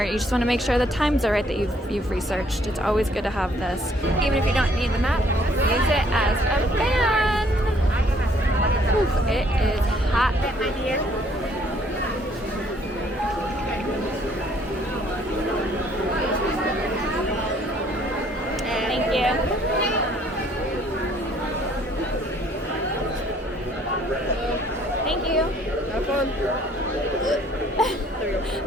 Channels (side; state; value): both; normal; correlation 0.62